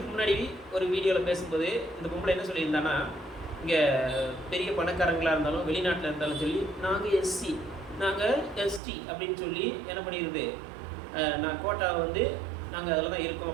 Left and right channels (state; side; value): drops out; left; at 8.8 s